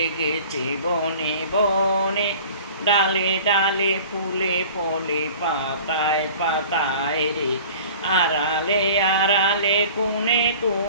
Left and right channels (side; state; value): both; inverted; correlation -0.44